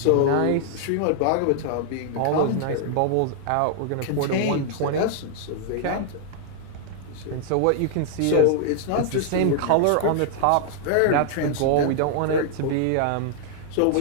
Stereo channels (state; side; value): different; both; correlation -0.01